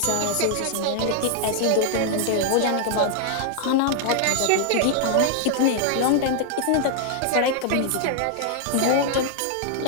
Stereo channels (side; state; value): both; different; correlation 0.00